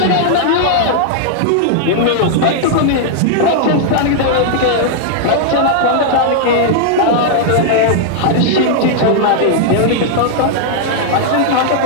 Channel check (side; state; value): both; different; correlation -0.01